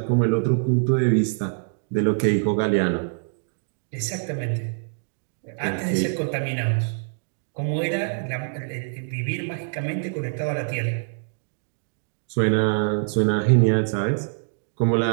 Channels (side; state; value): left; silent; 61 dB below the other